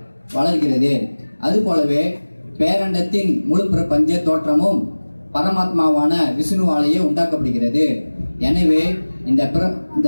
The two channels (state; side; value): inverted; both; correlation -1.00